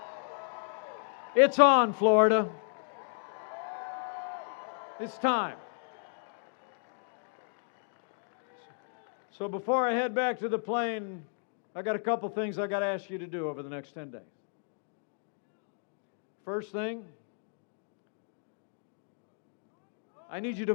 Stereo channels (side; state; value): right; silent; digital silence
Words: It's on, Florida. It's time. So before I head back to the plane, I got a couple things I got to ask you to do over the next 10 days. First thing, I need you to